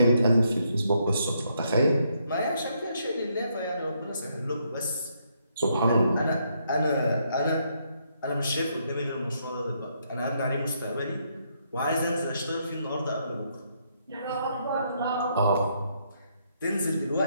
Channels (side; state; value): both; inverted; correlation -0.75